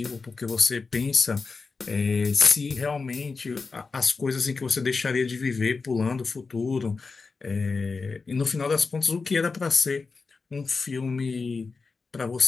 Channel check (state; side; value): quieter; right; 4.4 dB